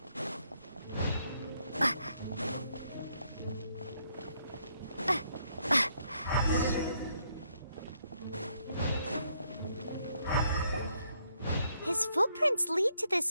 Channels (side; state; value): both; inverted; correlation -0.73